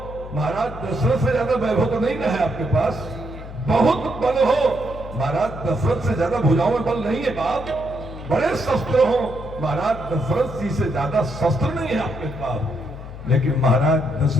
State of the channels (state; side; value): noise; left; hum, 12 dB below the sound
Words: महाराज दशरथ से ज्यादा वैभव तो नहीं है आपके पास, बहुत बल हो, महाराज दशरथ से ज्यादा भुजाओं में बल नहीं है बाप, बड़े शस्त्र हो, महाराज दशरथ जी से ज्यादा शस्त्र नहीं है आपके पास, लेकिन महाराज